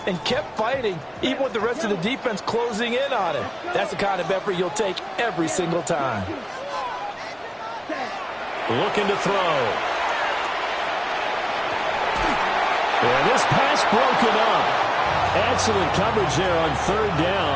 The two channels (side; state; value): both; identical; correlation 1.00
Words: and kept fighting, even with the rest of the defense closing in on him. That's the kind of effort you'll take every single time. Looking to throw. And this pass broken up. Excellent coverage there on third